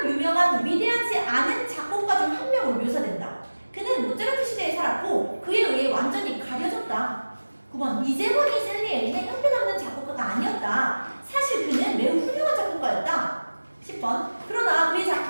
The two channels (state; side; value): inverted; both; correlation -1.00